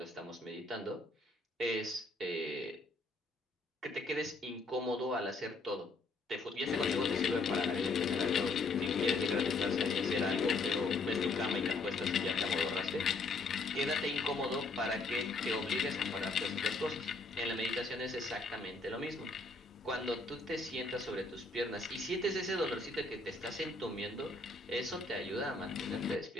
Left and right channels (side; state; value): right; quieter; 3.4 dB